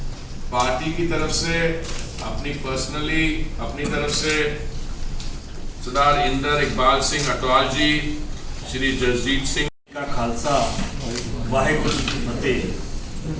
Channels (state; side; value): identical; both; correlation 1.00